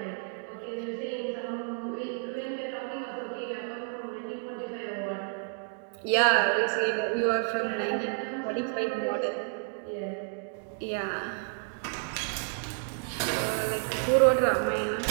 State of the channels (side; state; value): left; silent; 58 dB below the other